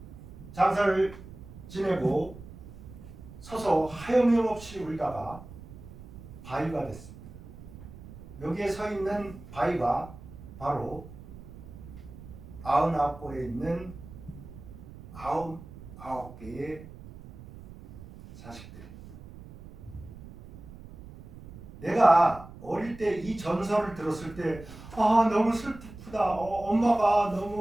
장사를 지내고 서서 하염없이 울다가 바위가 됐습니다. 여기에 서 있는 바위가 바로 99골에 있는 99개의 자식들입니다. 내가 어릴 때 이 전설을 들었을 때 너무 슬프다. 엄마가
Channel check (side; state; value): right; noise; rumble, 16 dB below the sound